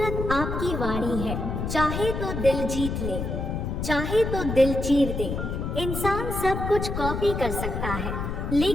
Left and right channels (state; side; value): noise; left; rumble, 3 dB below the sound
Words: आपकी वाणी है। चाहे तो दिल जीत ले, चाहे तो दिल चीर दे। इंसान सब कुछ कॉपी कर सकता है,